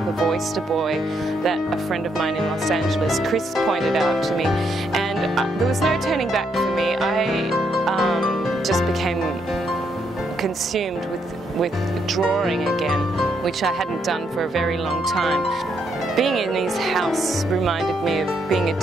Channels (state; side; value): normal; both; correlation 0.76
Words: of Oyster Boy that a friend of mine in Los Angeles, Chris, pointed out to me, and there was no turning back for me. I just became consumed with drawing again, which I hadn't done for a very long time. Being in his house reminded me of being a